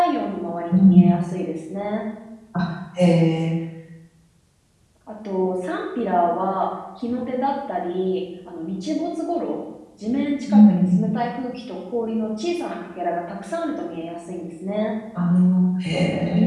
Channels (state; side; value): identical; both; correlation 1.00